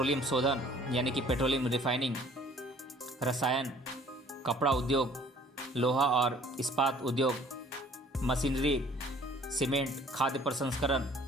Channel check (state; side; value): normal; both; correlation 0.54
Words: शोधन यानी कि पेट्रोलियम रिफाइनिंग, रसायन, कपड़ा उद्योग, लोहा और इस्पात उद्योग, मशीनरी, सीमेंट, खाद्य प्रसंस्करण,